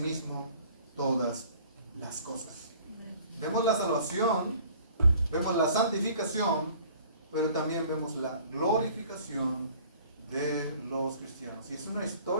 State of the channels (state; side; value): inverted; both; correlation -0.52